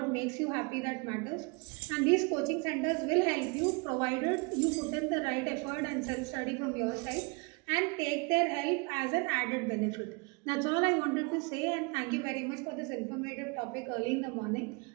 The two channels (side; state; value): left; quieter; 31.2 dB